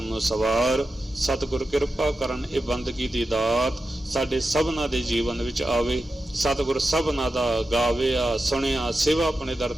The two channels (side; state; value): both; normal; correlation 0.90